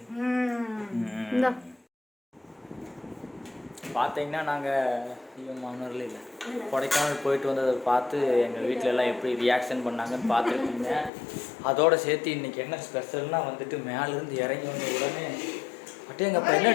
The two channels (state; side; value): drops out; right; at 11.1 s